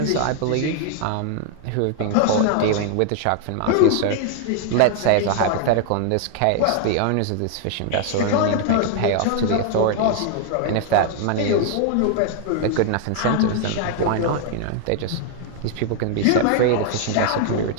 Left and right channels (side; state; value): both; different; correlation 0.00